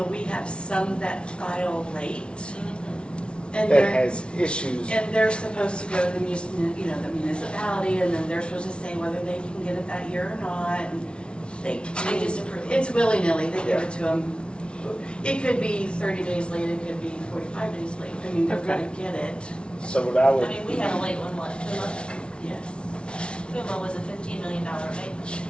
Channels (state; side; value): late; right; 0.057 ms